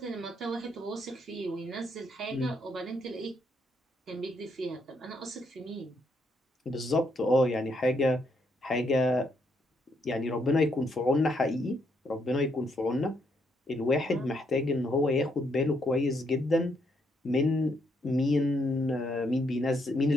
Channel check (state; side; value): normal; both; correlation 0.75